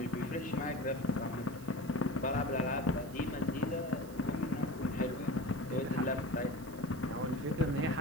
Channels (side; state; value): right; noise; hiss, 20 dB below the sound